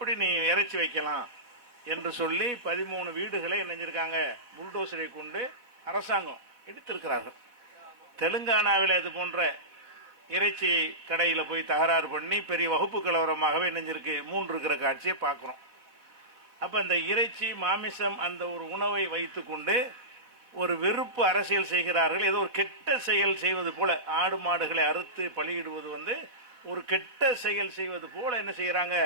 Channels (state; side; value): late; left; 4.1 ms